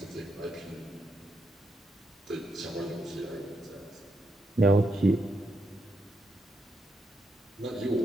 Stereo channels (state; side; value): normal; both; correlation 0.81